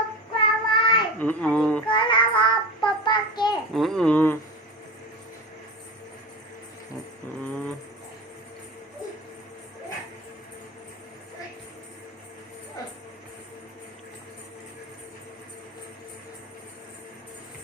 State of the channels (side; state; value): both; normal; correlation 0.28